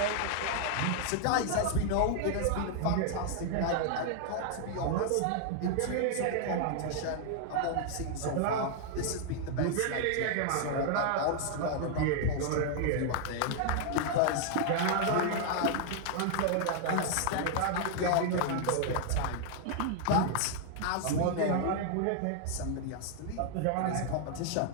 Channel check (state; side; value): different; both; correlation 0.00